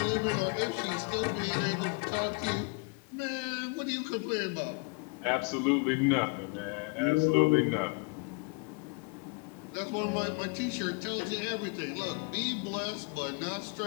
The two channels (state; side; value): quieter; right; 31.1 dB